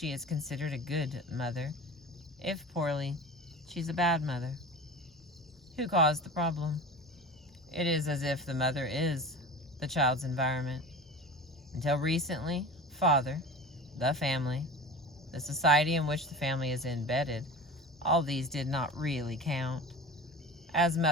is considered a good mother. If poorly, she's a bad mother. Who caused the problem? It is as if the mother is the child's environment. Until recently, father, the family, the society in which the family is embedded, all these did not really count. As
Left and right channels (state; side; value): normal; both; correlation 0.34